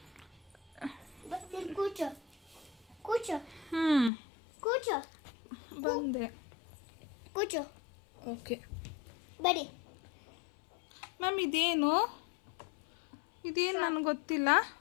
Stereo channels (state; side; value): drops out; right; at 4.1 s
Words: ಕೂಚು ಕೂಚು ಕೂಚು ಬಂದೆ. ಕೂಚು. ಓಕೆ ಬಡಿ. ಮ್ಯಾಮ್ ಇದೇನು ನನಗೆ ಗೊತ್ತಿಲ್ಲ.